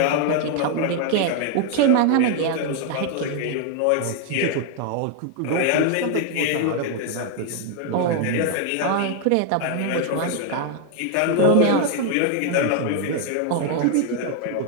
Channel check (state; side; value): different; both; correlation 0.00